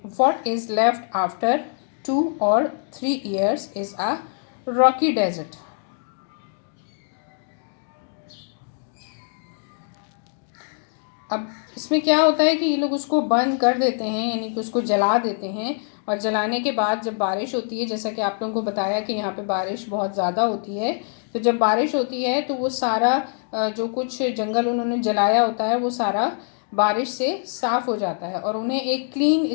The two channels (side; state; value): right; silent; 63 dB below the other